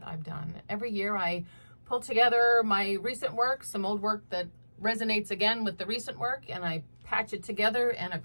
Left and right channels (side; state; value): both; inverted; correlation -1.00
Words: I've done. Every year I pull together my recent work, some old work that resonates again with the recent work, and I patch it together in a